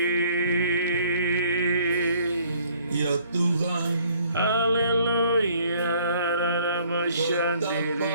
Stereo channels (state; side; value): inverted; both; correlation -0.60